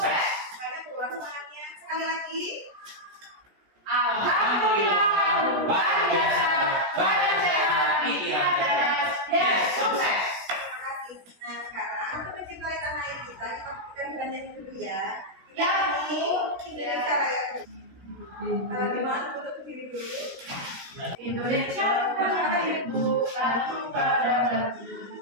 Semangat keluar semangatnya. Sekali lagi. Alhamdulillah, luar biasa, baik sehat, pikiran cerdas. Yes, sukses. Terima kasih. Nah sekarang untuk mencintai tanah air kita belajar dulu ya. Ya, ini Indonesia Raya. Gimana untuk berdiri dulu? Indonesia tanahku, tanahku padaku.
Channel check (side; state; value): left; late; 17 ms